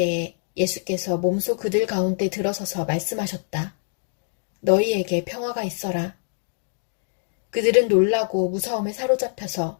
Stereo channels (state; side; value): silent; right; digital silence